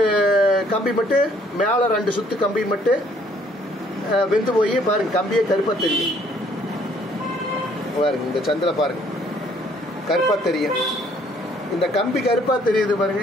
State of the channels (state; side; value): normal; both; correlation 0.63